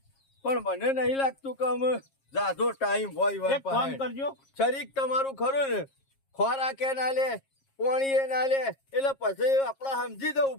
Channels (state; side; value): late; right; 7.4 ms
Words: પણ મને નહીં લાગતું કે અમે જાજો ટાઈમ હોય એક ફોન કરજો. શરીક તમારું ખરું ને, ખોરાકે ના લે પાણીએ ના લે એટલે પછી આપડે સમજી જવું